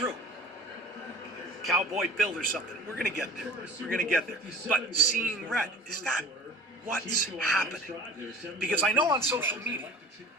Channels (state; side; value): normal; both; correlation 0.41